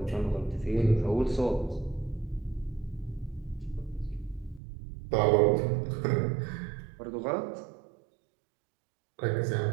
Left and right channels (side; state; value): left; drops out; at 4.6 s